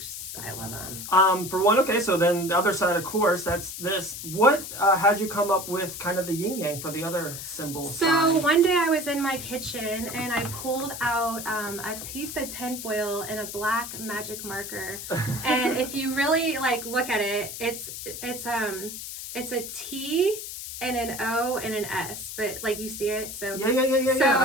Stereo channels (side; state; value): left; noise; hiss, 8 dB below the sound